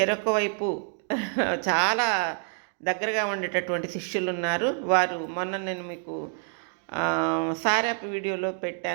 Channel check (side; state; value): left; silent; 56 dB below the other